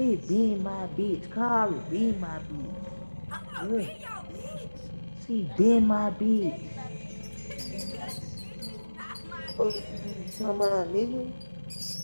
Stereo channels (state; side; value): inverted; both; correlation -1.00